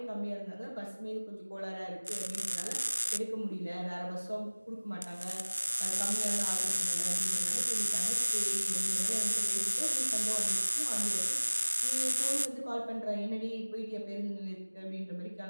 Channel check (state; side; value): inverted; both; correlation -1.00